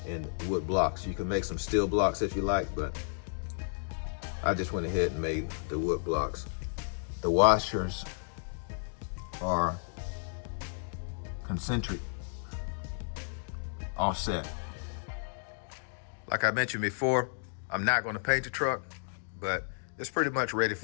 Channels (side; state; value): right; silent; digital silence